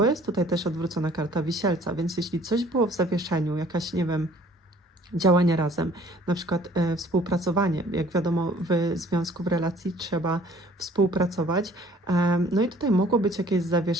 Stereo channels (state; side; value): normal; both; correlation 0.55